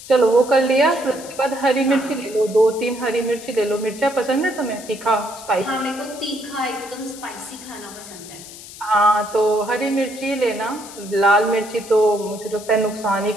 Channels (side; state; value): left; noise; hiss, 15 dB below the sound